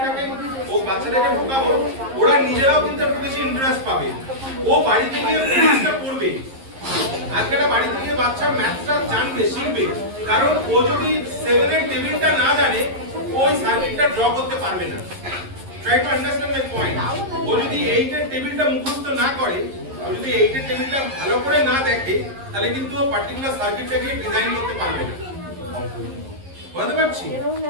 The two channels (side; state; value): left; late; 11 ms